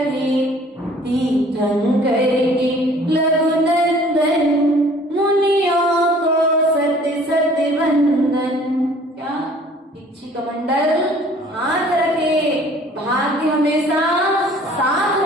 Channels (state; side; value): normal; both; correlation 0.53